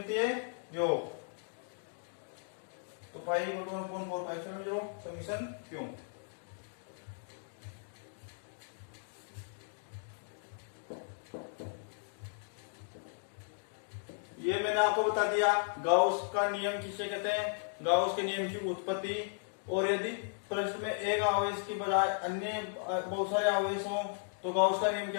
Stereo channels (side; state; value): right; silent; digital silence